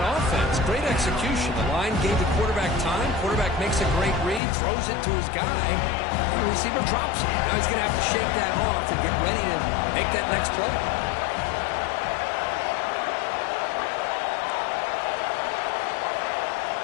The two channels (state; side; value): drops out; right; at 4.4 s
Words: offense. Great execution. The line gave the quarterback time. Quarterback makes a great read, throws it to his guy. The receiver drops it. Now he's going to have to shake that off and get ready to make that next play.